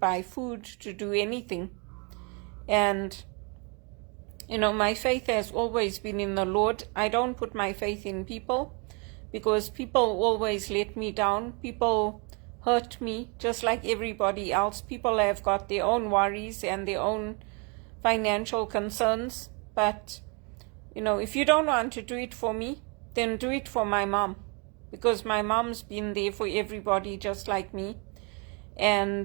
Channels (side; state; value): left; quieter; 33.3 dB